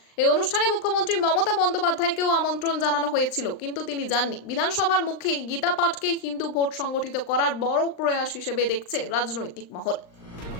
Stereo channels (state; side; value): late; right; 39 ms